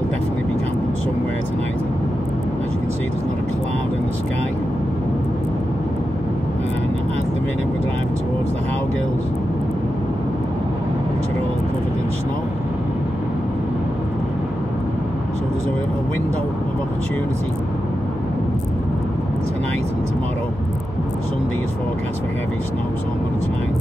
definitely be camping somewhere tonight. As you can see, there's not a cloud in the sky, and at the minute we're driving towards the Howgills, which are all covered in snow. So there's a window of opportunity tonight and tomorrow. Sunday is forecast for heavy snow, so I'm going to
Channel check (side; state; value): left; noise; hum, 13 dB below the sound